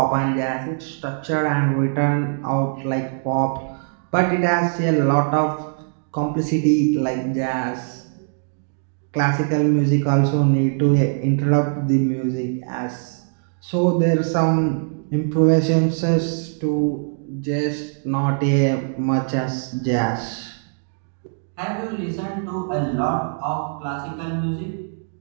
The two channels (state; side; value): silent; left; digital silence